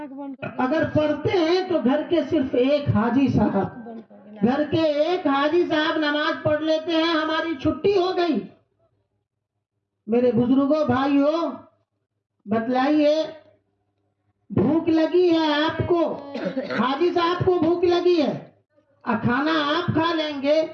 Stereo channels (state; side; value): identical; both; correlation 1.00